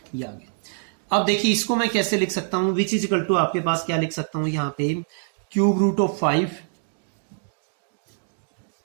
ये आ गया। अब देखिए इसको मैं कैसे लिख सकता हूं, विच इज इक्वल टू आपके पास क्या लिख सकता हूं यहां पे, क्यूब रूट ऑफ 5,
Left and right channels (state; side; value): silent; left; digital silence